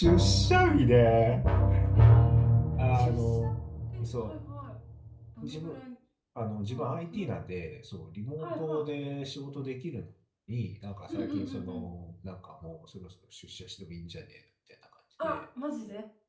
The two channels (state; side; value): identical; both; correlation 1.00